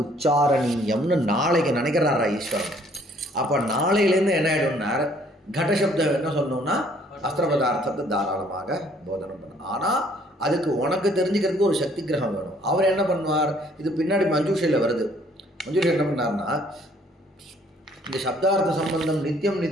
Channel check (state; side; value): normal; both; correlation 0.61